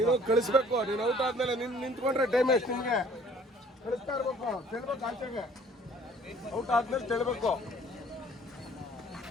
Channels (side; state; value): both; normal; correlation 0.56